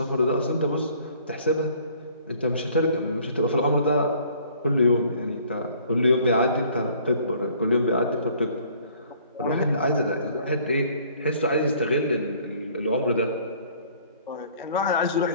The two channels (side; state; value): both; inverted; correlation -0.56